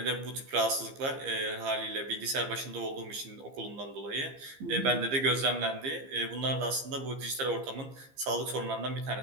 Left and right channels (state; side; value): late; left; 15 ms